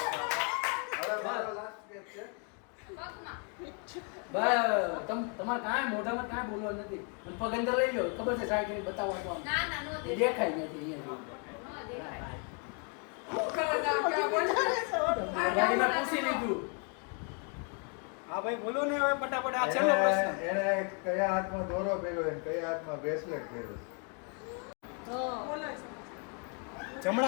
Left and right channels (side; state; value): right; quieter; 38.8 dB